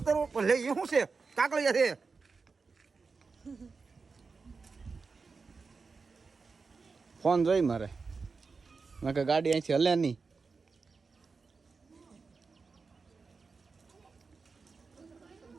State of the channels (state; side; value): quieter; left; 4.6 dB